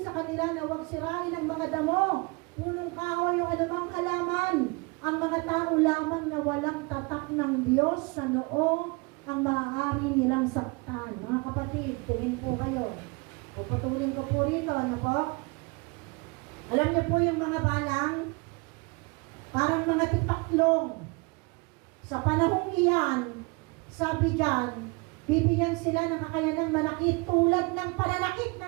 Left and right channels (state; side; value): quieter; left; 28.6 dB